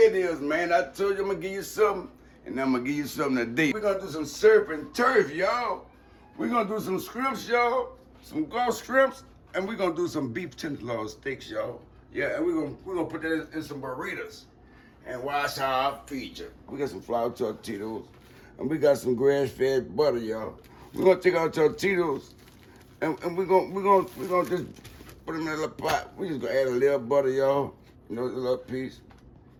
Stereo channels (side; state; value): both; identical; correlation 1.00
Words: is, man. I told you I'm gonna give you something, and I'm gonna give you something today. We're gonna do some surf and turf, y'all. We're gonna do some shrimps, y'all. Some gulf shrimps, and we're gonna do some beef tenderloin steaks, y'all. Yeah, and we're gonna put that in some burritos. And watch how I feature. We got some flour tortillas, and we got some grass-fed butter, y'all. We're gonna take our tortillas, and we're gonna just put them in a little pot. We just gonna add a little butter, y'all. You know, a little piece.